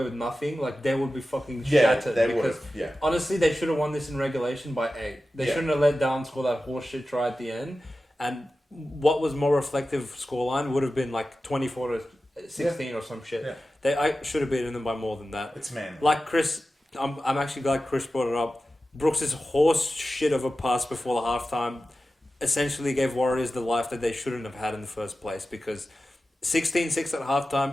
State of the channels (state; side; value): normal; both; correlation 0.94